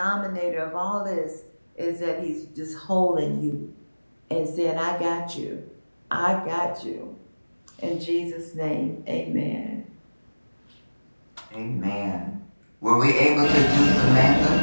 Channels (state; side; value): inverted; both; correlation -1.00